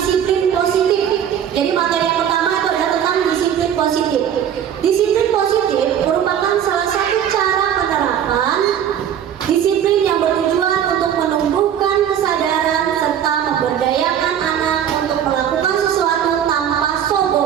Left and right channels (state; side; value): quieter; left; 9.4 dB